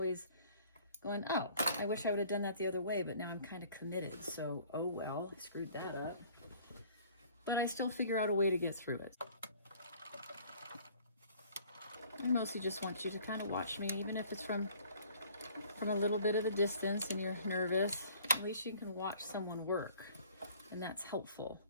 going, oh, I wish I would have done that the other way, but now I'm kind of committed. So, oh well, I screwed that up. But I still figure out a way to get through it. I mostly just want you to kind of watch me, even if it's from a little bit of a distance and you're nervous. At least you can watch someone work, and that's helpful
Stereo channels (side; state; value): both; inverted; correlation -0.54